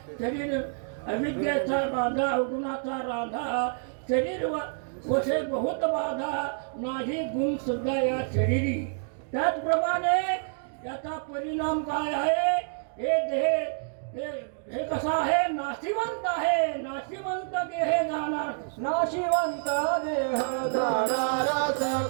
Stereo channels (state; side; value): silent; left; digital silence